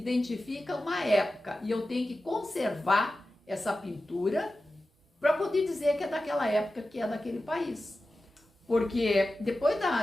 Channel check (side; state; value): both; normal; correlation 0.94